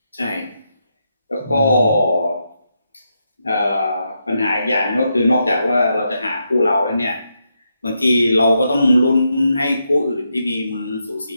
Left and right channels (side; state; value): both; inverted; correlation -0.82